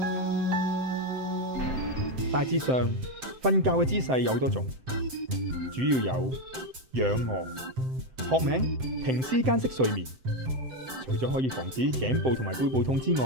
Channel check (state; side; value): late; left; 7.7 ms